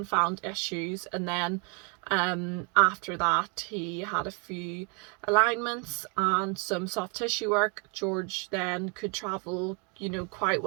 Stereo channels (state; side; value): quieter; left; 35.6 dB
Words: found issues. And then after that he had a few alignments and some soft tissue work. George then could travel, quite